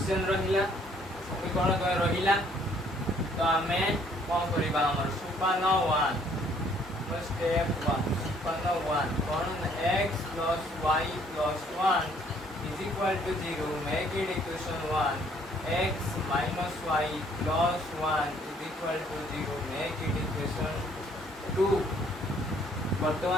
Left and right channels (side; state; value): both; normal; correlation 0.62